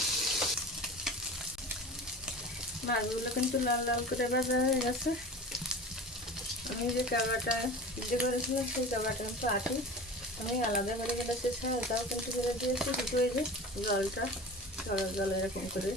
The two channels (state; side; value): normal; both; correlation 0.35